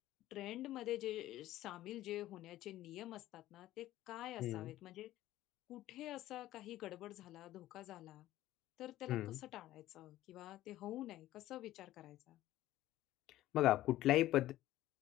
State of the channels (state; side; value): quieter; right; 14.8 dB